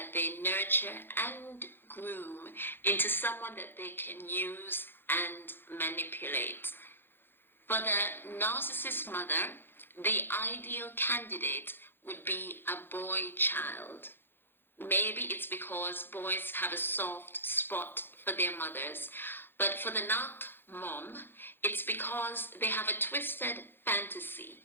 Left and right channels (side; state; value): right; late; 0.10 ms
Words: they nurture and groom into someone that they can use and manipulate. For the narcissist mother, the ideal candidate would be a boy child. Maybe it's because boys have a soft spot for their mothers, but for the narc mom, it's because they have a twisted fantasy